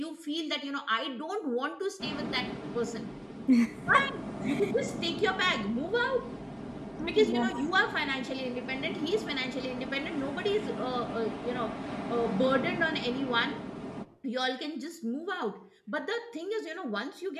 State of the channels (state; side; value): identical; both; correlation 1.00